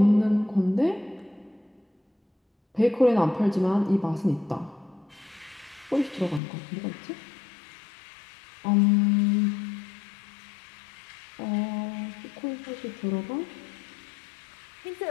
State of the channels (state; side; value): drops out; right; at 6.4 s